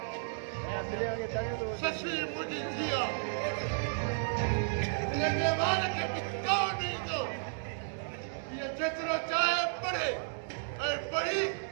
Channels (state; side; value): silent; left; digital silence